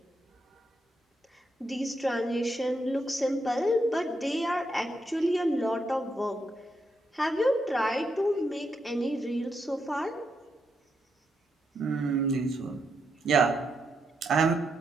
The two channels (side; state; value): both; normal; correlation 0.82